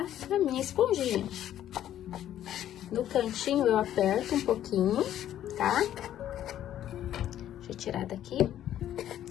a minha esponjinha. No cantinho eu aperto um pouquinho, tá? Deixa eu tirar daqui.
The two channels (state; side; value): quieter; right; 11.6 dB